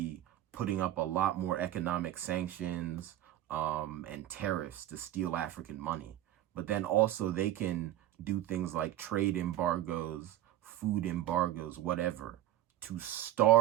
putting up a lot more economic sanctions and tariffs to steal African money. But then also they can do things like trade embargoes, food embargoes, whatever, to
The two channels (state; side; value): quieter; left; 13.3 dB